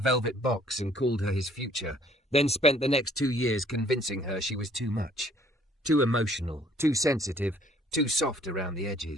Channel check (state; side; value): normal; both; correlation 0.59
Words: box and called her his future, then spent the next 2 years convincing her she was too much. Too emotional, too sensitive, too soft around the